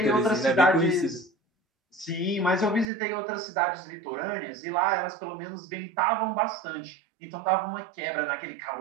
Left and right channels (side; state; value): left; drops out; at 2.9 s